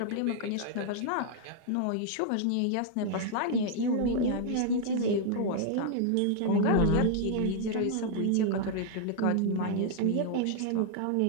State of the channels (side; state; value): both; different; correlation 0.00